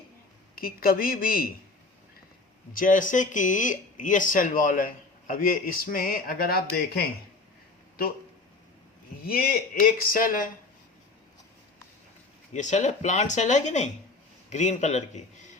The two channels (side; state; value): right; quieter; 3.6 dB